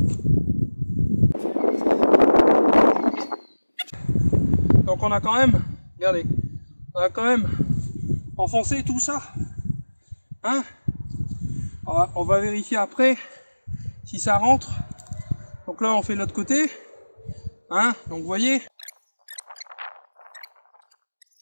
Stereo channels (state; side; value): inverted; both; correlation -1.00